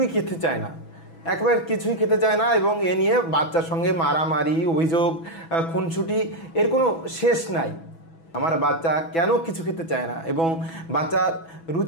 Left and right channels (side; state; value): right; late; 6.1 ms